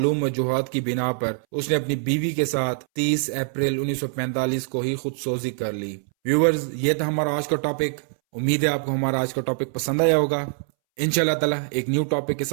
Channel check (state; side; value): silent; left; 63 dB below the other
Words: वजूहात की बिना पर उसने अपनी बीवी के साथ 30 अप्रैल 1945 को ही खुदसोजी कर ली। व्यूअर्स, ये था हमारा आज का टॉपिक। उम्मीद है आपको हमारा आज का टॉपिक पसंद आया होगा। इंशाल्लाह ताला एक न्यू टॉपिक के